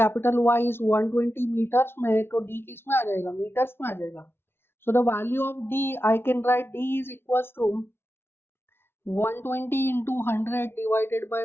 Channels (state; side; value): late; right; 0.11 ms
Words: Y is 120 metres में, तो डी किस में आ जाएगा, मीटर्स में आ जाएगा। So the value of D I can write D is equals to 120 into 100 divided by